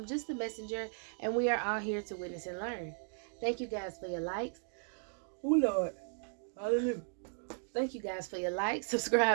just a messenger, and we are all here to witness and learn. Thank you guys for your likes. Oh Lord, hallelujah. Thank you guys for your likes,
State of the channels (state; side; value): silent; left; 54 dB below the other